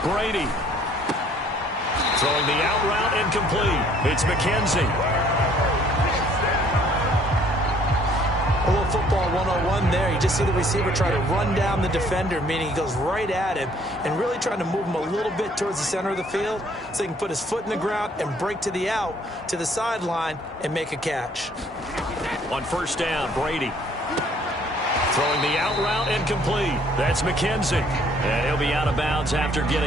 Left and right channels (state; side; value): normal; both; correlation 0.60